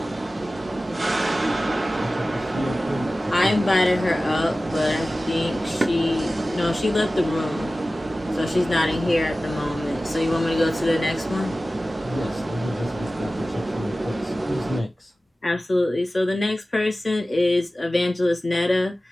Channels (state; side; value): normal; both; correlation 0.96